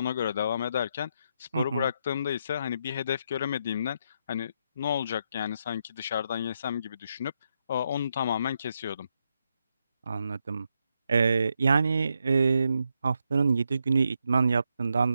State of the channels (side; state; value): both; inverted; correlation -0.81